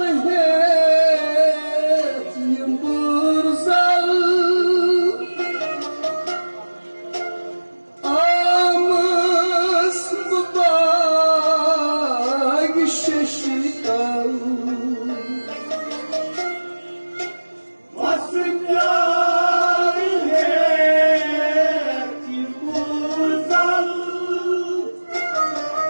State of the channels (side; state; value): both; inverted; correlation -1.00